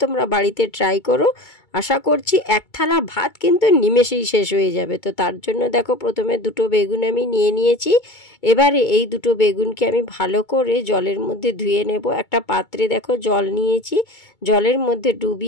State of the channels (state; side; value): late; right; 2.2 ms